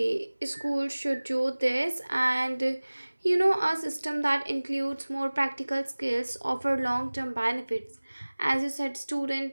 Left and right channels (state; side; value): inverted; both; correlation -1.00